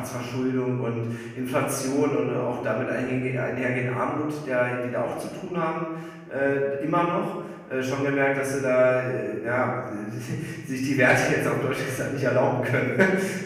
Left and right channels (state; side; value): identical; both; correlation 1.00